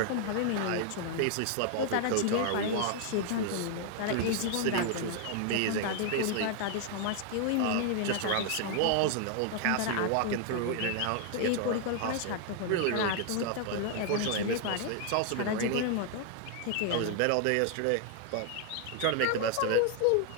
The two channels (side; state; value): both; different; correlation 0.00